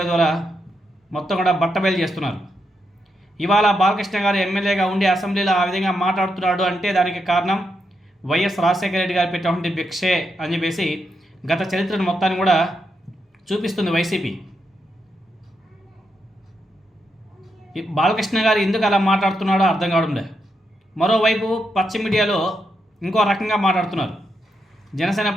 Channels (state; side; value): normal; both; correlation 0.82